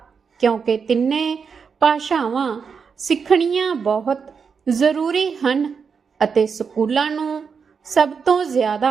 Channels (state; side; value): quieter; left; 5.9 dB